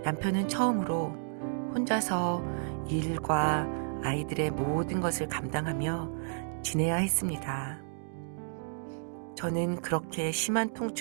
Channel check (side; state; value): left; silent; digital silence